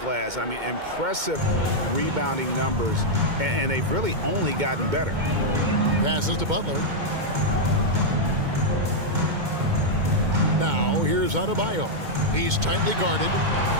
I mean, impressive rebounding numbers, and they've really only gotten better. Passes to Butler. Now, here's Adebayo. He's tightly guarded.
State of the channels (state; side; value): late; left; 2.2 ms